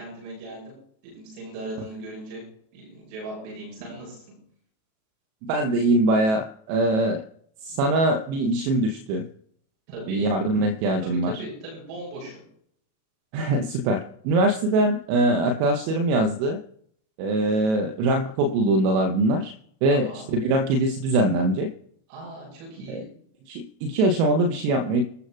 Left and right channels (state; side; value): late; left; 37 ms